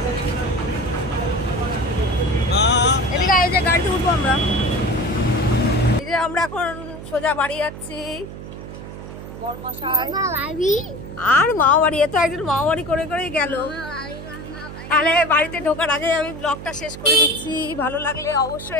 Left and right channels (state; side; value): noise; right; hum, 12 dB below the sound